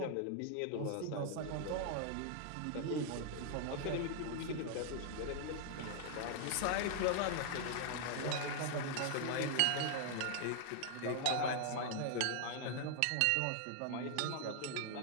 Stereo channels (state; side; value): different; both; correlation 0.00